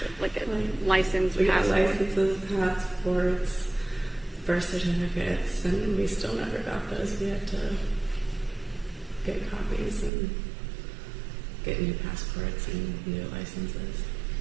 So like a license, we got passport? licenses, passports, birth certificates, and we still never got those. We had to get copies and get new passports and new licenses.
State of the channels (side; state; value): left; drops out; at 10.1 s